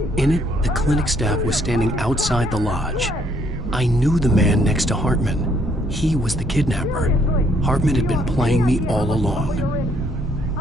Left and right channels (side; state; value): both; normal; correlation 0.67